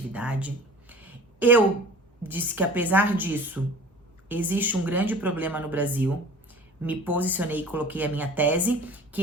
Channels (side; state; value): both; normal; correlation 0.43